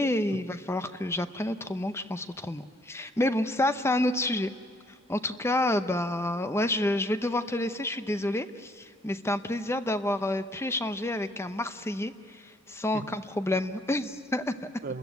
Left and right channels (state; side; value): normal; both; correlation 0.66